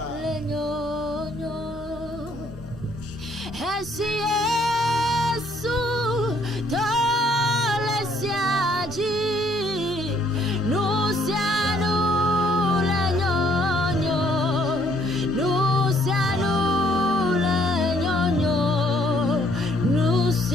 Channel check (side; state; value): both; normal; correlation 0.66